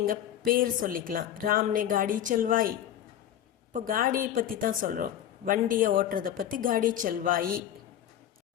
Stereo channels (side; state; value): right; quieter; 10.8 dB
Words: பேர் சொல்லிக்கலாம், ராம்னே காடி செல்வாய். இப்போ காடியை பற்றி தான் சொல்கிறோம், வண்டியை ஓட்டுறதை பற்றி காடி செல்வாயி.